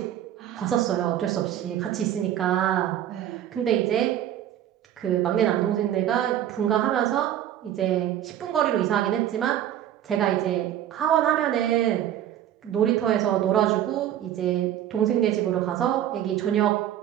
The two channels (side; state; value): left; quieter; 11.3 dB